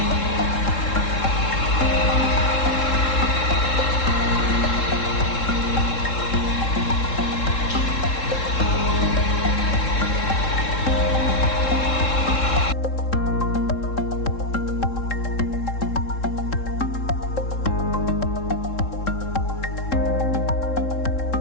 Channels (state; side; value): late; right; 3.7 ms